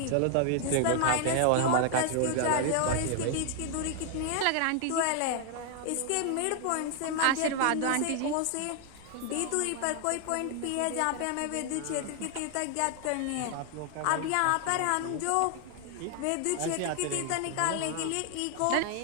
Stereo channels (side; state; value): both; different; correlation 0.00